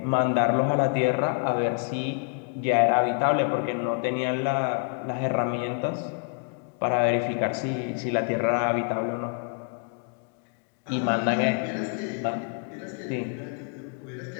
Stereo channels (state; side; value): quieter; right; 39.7 dB